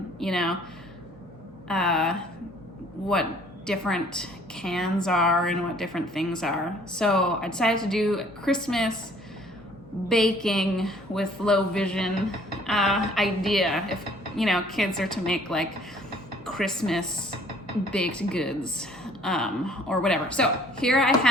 what different cans are and what different things are. So I decided to do a Christmas baking with low vision idea. If kids are to make like Christmas baked goods or whatever. So here I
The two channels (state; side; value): normal; both; correlation 0.57